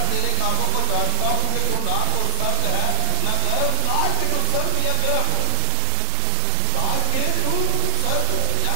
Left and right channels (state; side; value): different; both; correlation 0.00